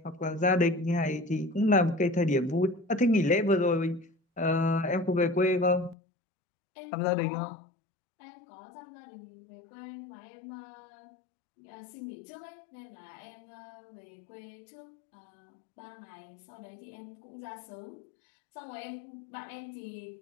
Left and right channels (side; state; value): right; drops out; at 6.0 s